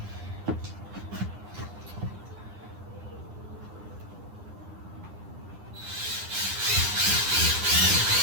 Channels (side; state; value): left; late; 9.8 ms